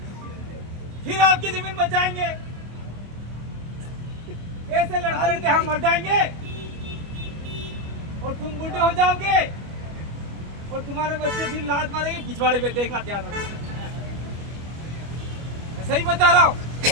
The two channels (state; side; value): late; left; 25 ms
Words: फिर आपकी जमीन बचाएंगे। ऐसे लड़ते लड़ते हम मर जाएंगे और तुम बूढ़े हो जाओगे और तुम्हारे बच्चे फिर लात मारेंगे पिछवाड़े पे। देखना ध्यान रखना, मैं सही बता रहा हूँ।